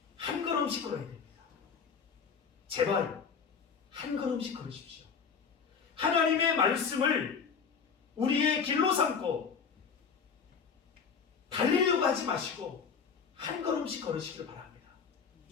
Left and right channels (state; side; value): quieter; right; 6.1 dB